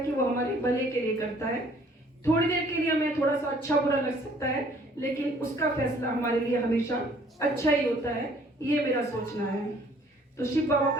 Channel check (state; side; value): normal; both; correlation 0.58